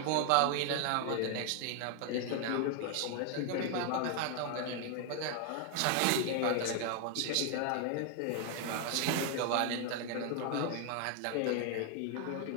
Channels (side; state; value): both; different; correlation 0.00